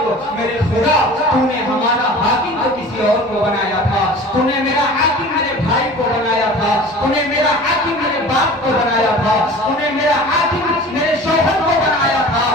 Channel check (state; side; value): normal; both; correlation 0.41